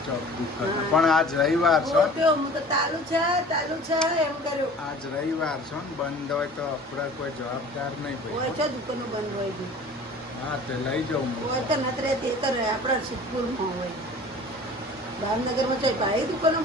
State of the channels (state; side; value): normal; both; correlation 0.44